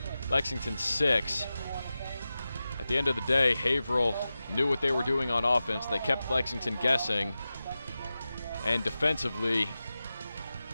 Lexington 6. At the end of the day, Haverhill knew what they were doing on offense. They kept Lexington guessing. And defensively,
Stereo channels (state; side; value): inverted; both; correlation -0.94